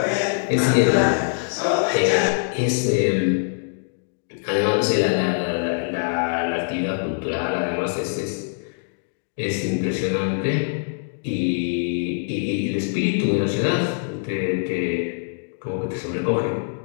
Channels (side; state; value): right; silent; digital silence